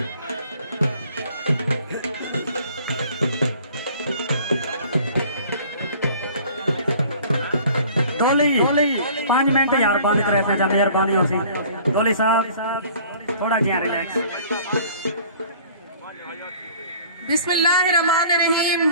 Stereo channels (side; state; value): both; inverted; correlation -0.51